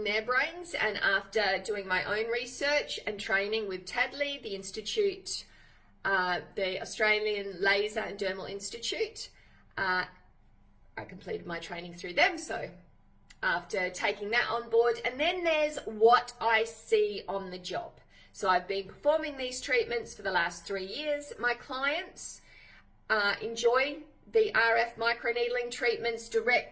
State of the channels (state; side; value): identical; both; correlation 1.00